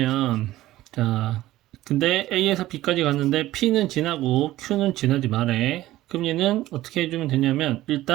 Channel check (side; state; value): left; quieter; 15.7 dB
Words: 자, 근데 A에서 B까지 갔는데 P는 지나고 Q는 지나지 말해. 그럼 얘는 어떻게 해주면 되냐면,